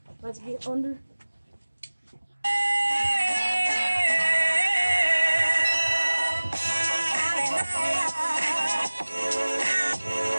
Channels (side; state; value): both; inverted; correlation -1.00